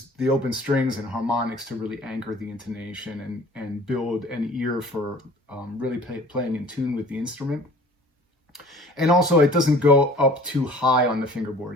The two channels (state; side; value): normal; both; correlation 0.48